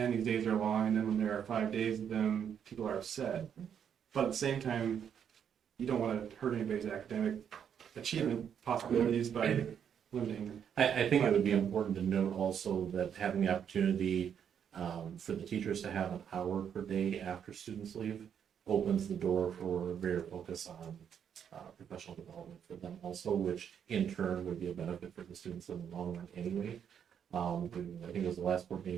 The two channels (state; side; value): quieter; left; 8.3 dB